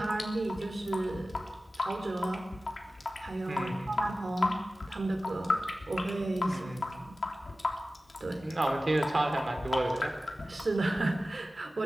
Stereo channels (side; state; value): both; normal; correlation 0.95